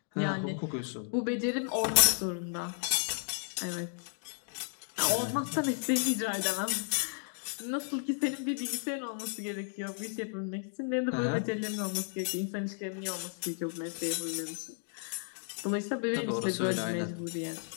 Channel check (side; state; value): right; silent; 55 dB below the other